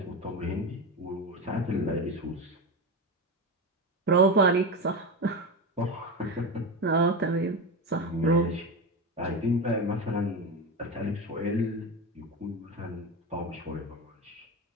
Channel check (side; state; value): both; normal; correlation 0.20